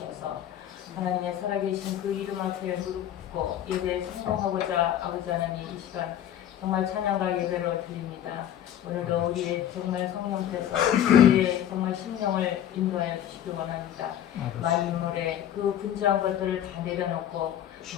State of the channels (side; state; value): right; quieter; 10.9 dB